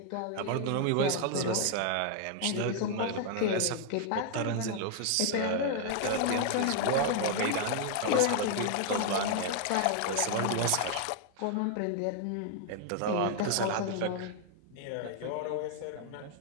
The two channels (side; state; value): both; different; correlation 0.00